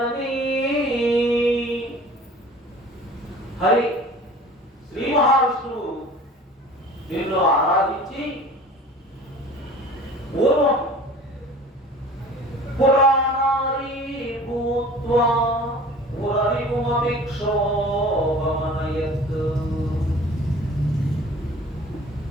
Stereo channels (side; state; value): both; normal; correlation 0.44